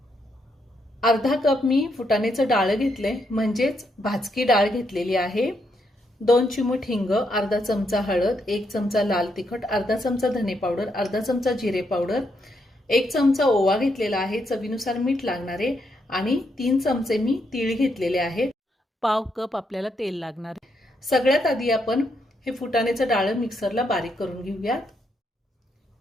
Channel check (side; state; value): both; normal; correlation 0.78